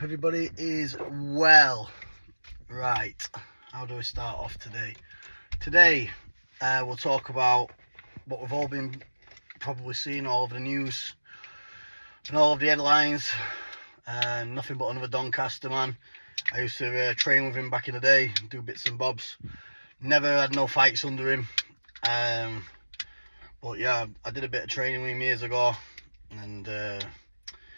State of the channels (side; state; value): both; inverted; correlation -1.00